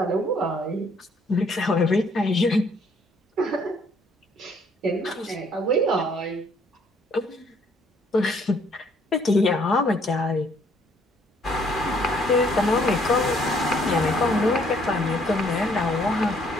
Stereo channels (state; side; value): normal; both; correlation 0.64